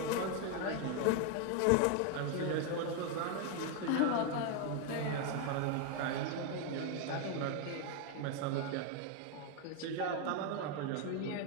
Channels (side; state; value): both; different; correlation 0.01